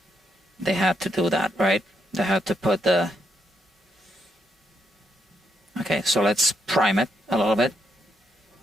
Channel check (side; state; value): both; normal; correlation 0.76